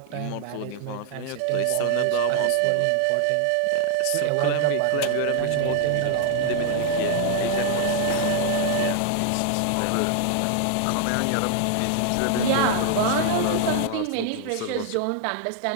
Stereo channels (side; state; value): both; different; correlation 0.00